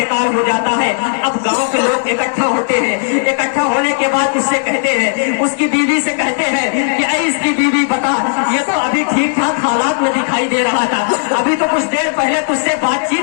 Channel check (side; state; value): right; silent; digital silence